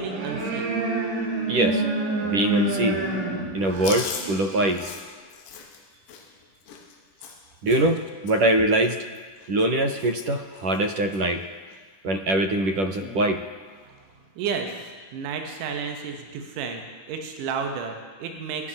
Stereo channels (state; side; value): late; left; 10 ms